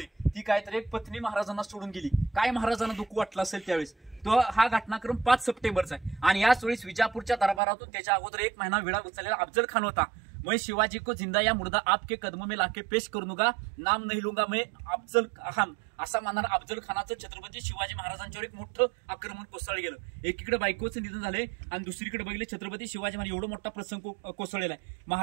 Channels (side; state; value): left; drops out; at 7.6 s